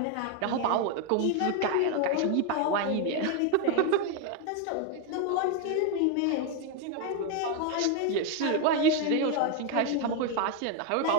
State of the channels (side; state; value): both; different; correlation 0.01